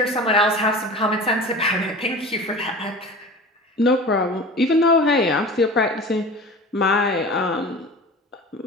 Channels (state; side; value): normal; both; correlation 0.36